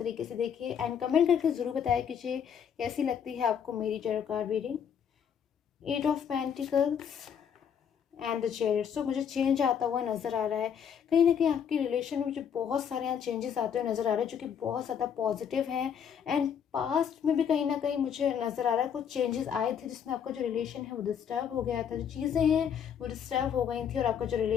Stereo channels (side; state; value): right; quieter; 8.0 dB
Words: से देखिए एंड कमेंट करके ज़रूर बताया कीजिए कैसी लगती है आपको मेरी general card reading. 8 of pentacles and the chairs. सो मुझे चेंज आता हुआ नज़र आ रहा है। कहीं ना कहीं आपके रिलेशन में मुझे बहुत सारे यहाँ चेंजेस आते हुए नज़र आ रहे हैं जो कि बहुत ज़्यादा पॉजिटिव हैं। एंड पास्ट में भी कहीं ना कहीं मुझे नज़र आ रहा है कुछ चेंजेस आए थे जिसमें आपका जो रिलेशन है वो डिस्टर्ब हो गया था, जो चीज़ें हैं वो डिस्टर्ब हो गई थी और आपका जो